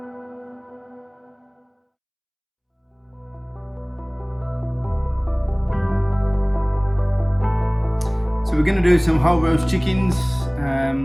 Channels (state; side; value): identical; both; correlation 1.00